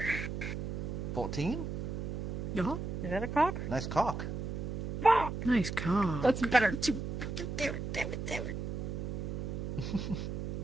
14. Yeah. Is that a cock? Nice cock. Nice car. That's better too. Damn it.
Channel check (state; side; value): noise; right; hum, 4 dB below the sound